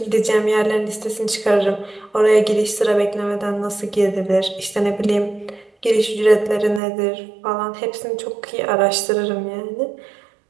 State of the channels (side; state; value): left; drops out; at 6.8 s